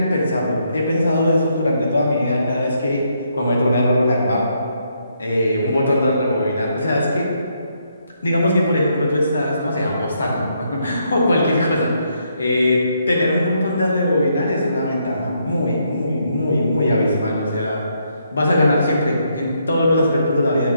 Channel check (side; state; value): both; inverted; correlation -0.75